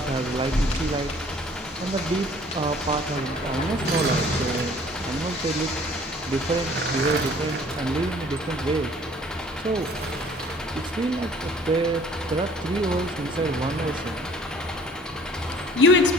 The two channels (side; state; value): both; normal; correlation 0.54